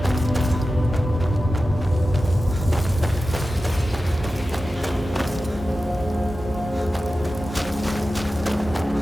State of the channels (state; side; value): normal; both; correlation 0.94